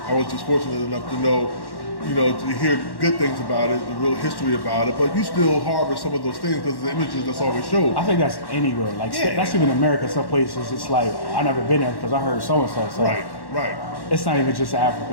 I was just fortunate enough to know, you know, to hear good things about it, the real history about it, but you still harbor some of those things because the images that's always showed. I think that's anywhere. Like, that's even America. Some places, it's like, I never been there because I heard so-and-so. So right. It's not even just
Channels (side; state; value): right; late; 1.1 ms